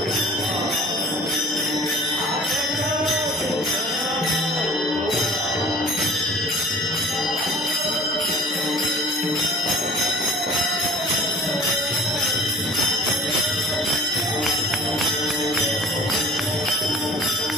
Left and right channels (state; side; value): normal; both; correlation 0.49